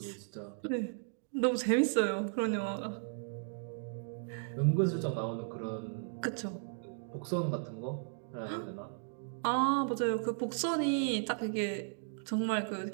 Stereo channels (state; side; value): silent; left; digital silence